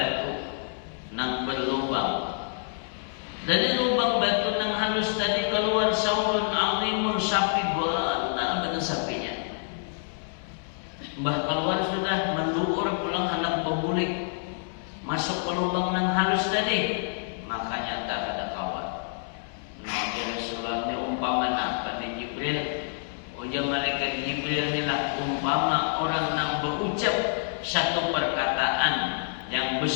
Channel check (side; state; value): right; silent; 60 dB below the other